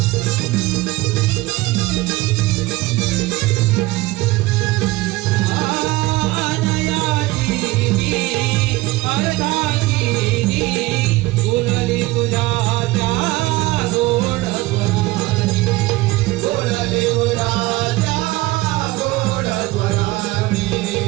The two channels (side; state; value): left; quieter; 19.7 dB